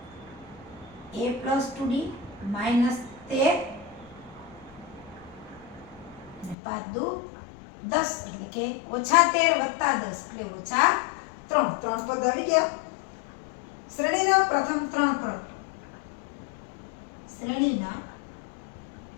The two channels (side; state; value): right; drops out; at 6.6 s